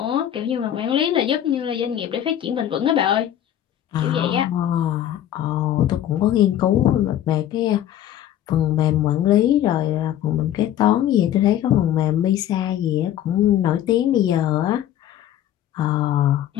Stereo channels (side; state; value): right; quieter; 11.5 dB